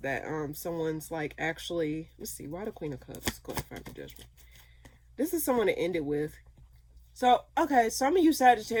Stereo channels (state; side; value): identical; both; correlation 1.00